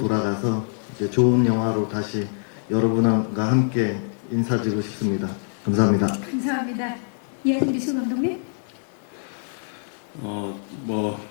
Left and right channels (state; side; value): silent; right; digital silence